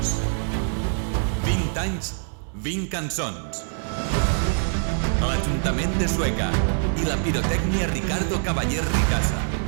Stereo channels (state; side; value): silent; left; 62 dB below the other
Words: 20 anys, 20 cançons. L'Ajuntament de Sueca i la pirotècnia Ricardo Cavaller Ricasa